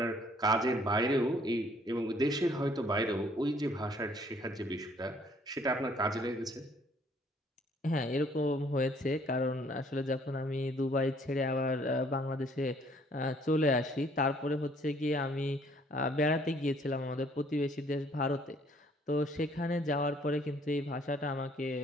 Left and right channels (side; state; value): both; normal; correlation 0.62